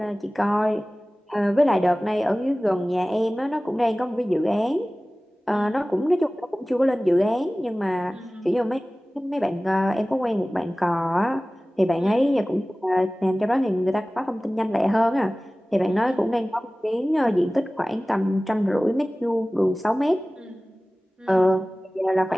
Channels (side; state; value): both; normal; correlation 0.98